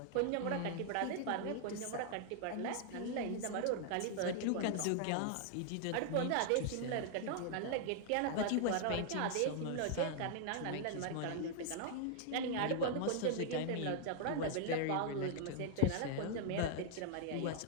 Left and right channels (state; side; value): different; both; correlation 0.00